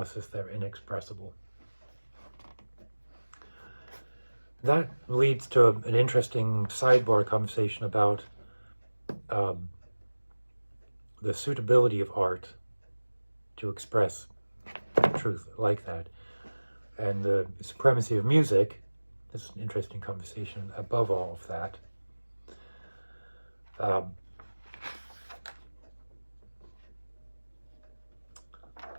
they're inexpressible. That leads to an interesting sidebar conversation about the suitability of art to express truth like that, and the supremacy of music. This is an interesting conversation above all of that.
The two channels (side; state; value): both; inverted; correlation -1.00